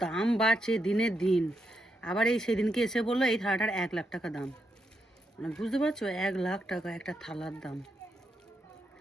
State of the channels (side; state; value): both; normal; correlation 0.82